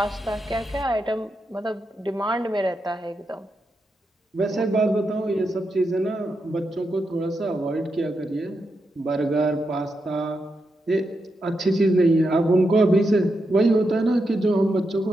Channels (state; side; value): normal; both; correlation 0.85